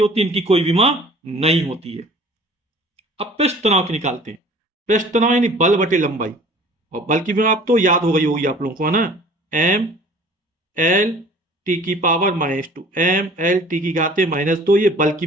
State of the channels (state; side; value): normal; both; correlation 0.48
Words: है, इनकी कोई विमा नहीं होती है। अब पृष्ठ तनाव की निकालते हैं। पृष्ठ तनाव यानी बल बटे लंबाई, और बल की विमा आप तो याद हो गई होगी आप लोगों को, है ना, m L T की पावर -2, m L T की घाते -2, ये बल की